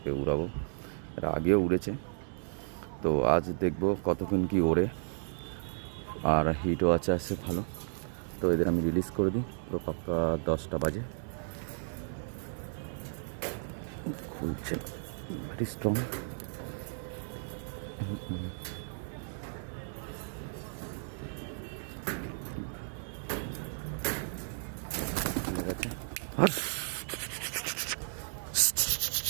উড়াবো। এরা আগেও উড়েছে, তো আজ দেখব কতক্ষণ কি ওড়ে, আর হিটও আছে ভালো। তো এদের আমি রিলিজ করে দিই। তো পাক্কা 10টা বাজে। খুলছে, ভেরি স্ট্রং। ঠিক আছে,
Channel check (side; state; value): left; silent; digital silence